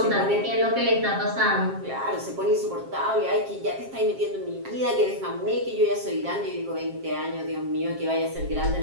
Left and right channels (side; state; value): left; late; 7.5 ms